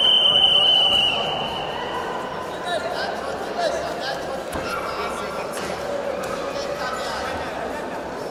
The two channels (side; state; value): both; identical; correlation 1.00